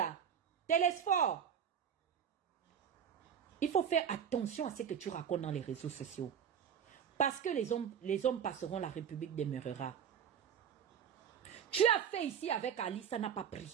Télésphore. Il faut faire attention à ce que tu racontes dans les réseaux sociaux. Parce que les hommes passeront, la République demeurera. Tu as fait ici avec Ali, ça n'a pas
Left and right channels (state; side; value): quieter; left; 8.2 dB